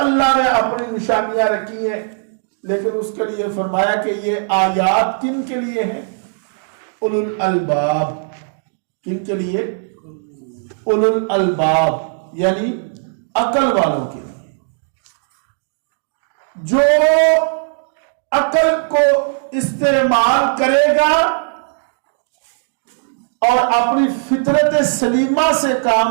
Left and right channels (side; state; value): left; silent; digital silence